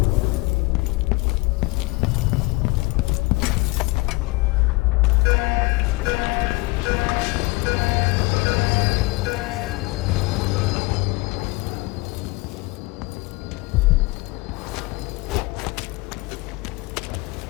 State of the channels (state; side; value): quieter; right; 23.6 dB